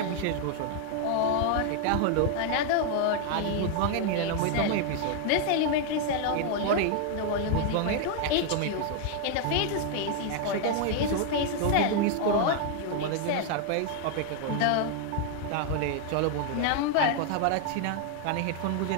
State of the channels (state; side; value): different; both; correlation 0.00